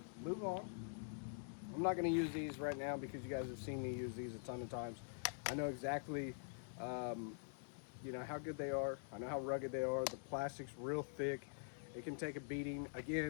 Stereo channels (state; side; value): silent; right; digital silence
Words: move on. I'm not going to use these right now because you guys have seen me use these a ton of times. I know exactly, you know, how good they are. I know how rugged they are. The plastic's real thick. It can take a beating.